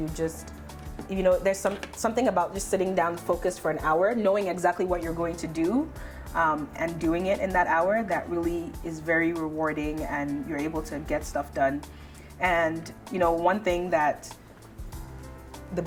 just, there's something about just sitting down focused for an hour, knowing exactly what you're going to do, and doing it in that hour, that really is very rewarding, and you're able to get stuff done. And one thing that the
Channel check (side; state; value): both; identical; correlation 1.00